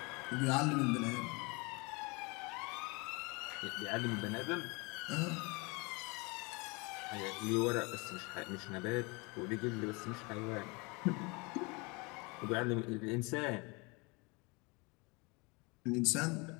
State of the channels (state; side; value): quieter; right; 28.2 dB